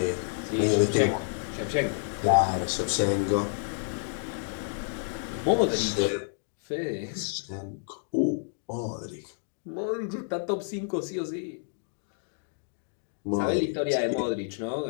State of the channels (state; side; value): silent; right; digital silence